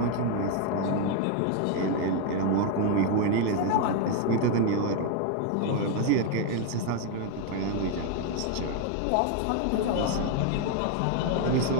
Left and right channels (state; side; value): different; both; correlation 0.01